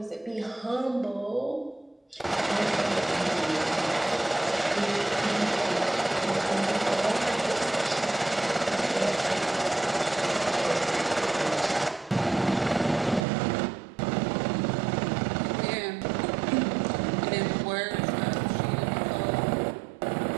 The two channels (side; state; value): left; drops out; at 13.2 s